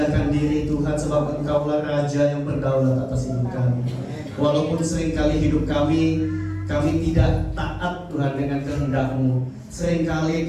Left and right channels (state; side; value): identical; both; correlation 1.00